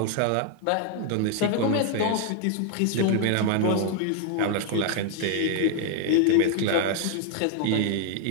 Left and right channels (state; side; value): different; both; correlation 0.00